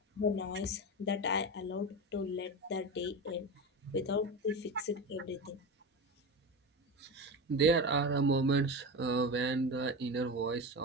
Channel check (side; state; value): both; normal; correlation 0.23